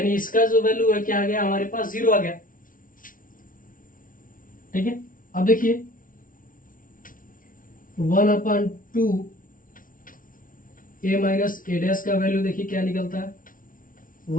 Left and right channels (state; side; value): late; right; 0.39 ms